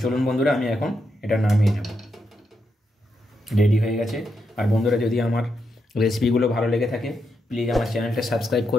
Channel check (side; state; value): both; normal; correlation 0.83